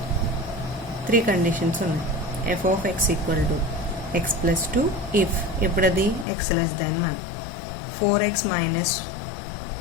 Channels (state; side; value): drops out; right; at 6.2 s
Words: 3 కండిషన్స్ ఉన్నాయి. F of x equal to x plus 2 if ఇప్పుడు అది x less than 1. 4x